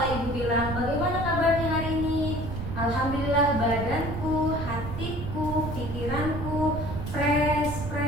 Ibu bilang bagaimana kabarnya hari ini? Alhamdulillah, badanku, hatiku, pikiranku fresh.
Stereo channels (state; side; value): noise; right; rumble, 6 dB below the sound